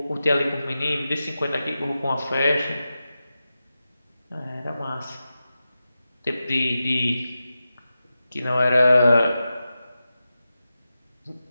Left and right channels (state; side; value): inverted; both; correlation -0.92